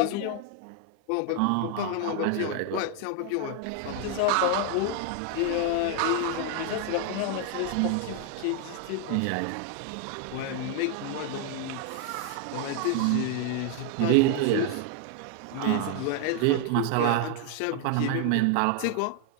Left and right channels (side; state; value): both; different; correlation 0.00